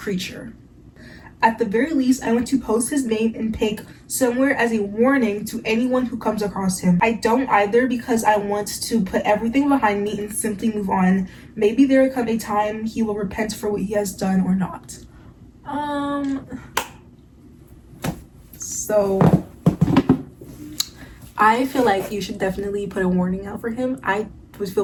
At the very least, I want to post his name and pic somewhere as a warning to anyone who comes across him. I don't either, because I want to put everything behind me and simply move on. Maybe there will come a time he will repent for what he has done or not. So I feel like you should definitely put a warning out for him. I would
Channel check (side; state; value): both; identical; correlation 1.00